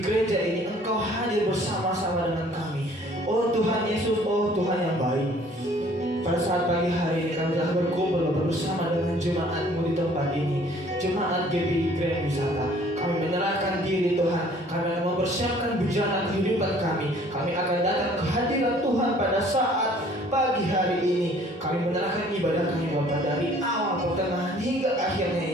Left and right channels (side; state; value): both; normal; correlation 0.56